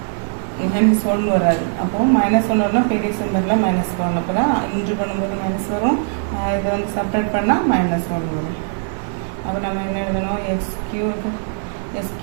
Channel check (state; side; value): silent; left; 61 dB below the other